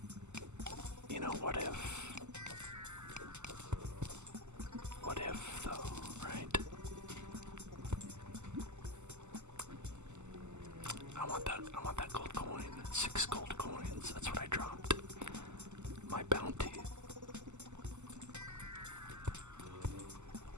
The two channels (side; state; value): left; late; 0.83 ms